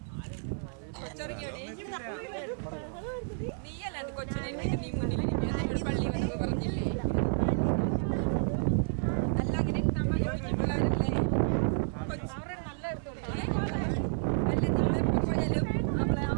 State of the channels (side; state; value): left; silent; digital silence